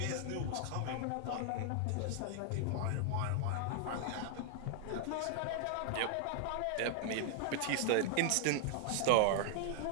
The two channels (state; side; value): different; both; correlation 0.00